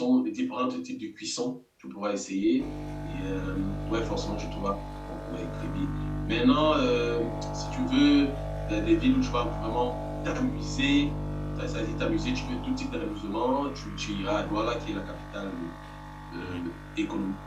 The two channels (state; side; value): identical; both; correlation 1.00